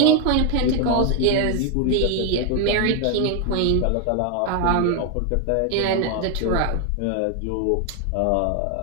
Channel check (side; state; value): both; different; correlation 0.00